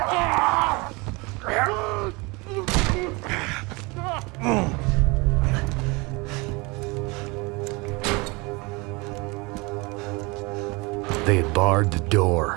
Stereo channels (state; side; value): quieter; left; 26.4 dB